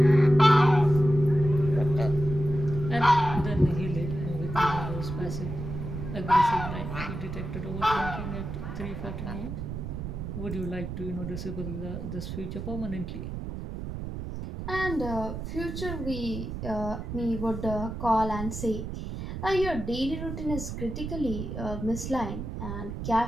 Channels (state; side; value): noise; right; rumble, 6 dB below the sound